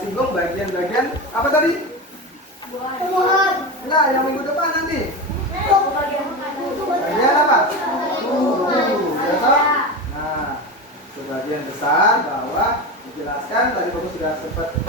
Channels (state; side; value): normal; both; correlation 0.22